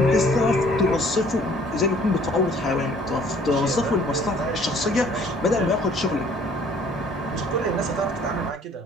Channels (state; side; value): normal; both; correlation 0.56